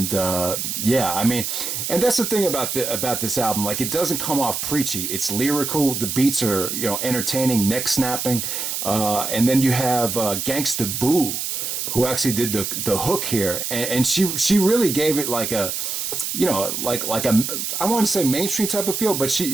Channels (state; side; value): noise; right; hiss, 3 dB below the sound